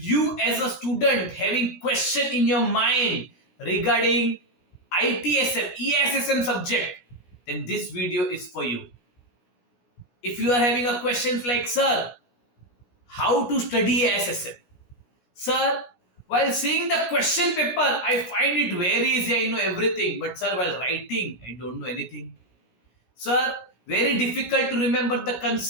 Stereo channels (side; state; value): right; late; 17 ms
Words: you as a student having question in your mind regarding ITSM, ESSM subject, then this video is for you. If you are having a questions like, sir, how to study ESSM? Sir, while seeing the question paper, I find it very easy. I know everything. But sir, while writing, I don't know anything. Sir, very difficult to remember the